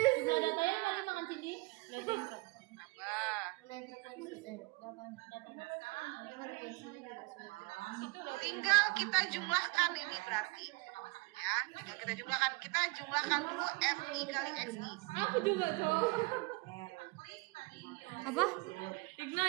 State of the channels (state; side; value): quieter; left; 27.3 dB